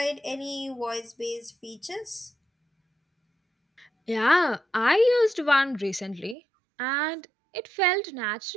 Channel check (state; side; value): drops out; left; at 6.4 s